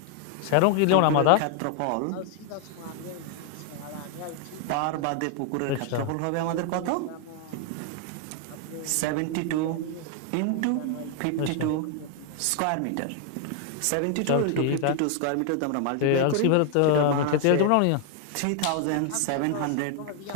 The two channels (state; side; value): different; both; correlation 0.00